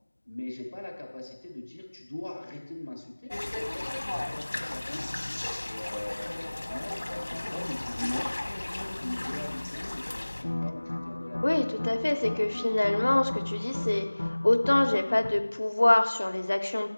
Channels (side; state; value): both; inverted; correlation -1.00